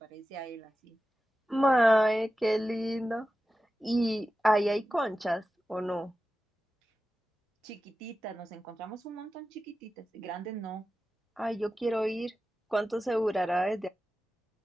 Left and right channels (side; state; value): both; normal; correlation 0.93